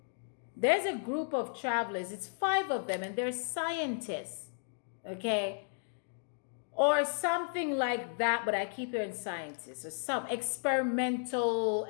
There's a group of travelers, it's 5 of them, and they're scientists, okay? Or something like that, but I keep hearing scientists, or some experimental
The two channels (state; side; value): silent; right; digital silence